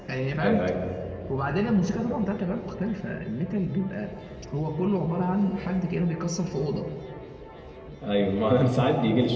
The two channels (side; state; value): both; identical; correlation 1.00